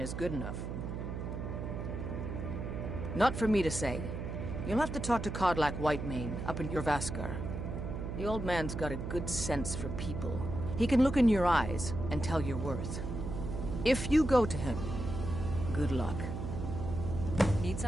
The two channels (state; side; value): noise; right; hum, 5 dB below the sound